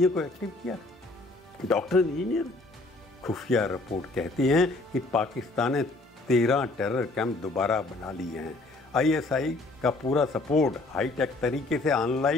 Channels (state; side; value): quieter; right; 3.1 dB